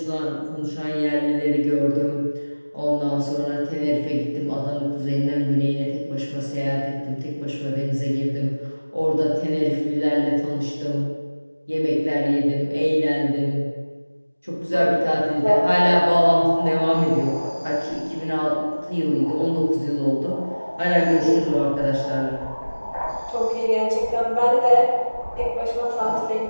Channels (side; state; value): both; inverted; correlation -1.00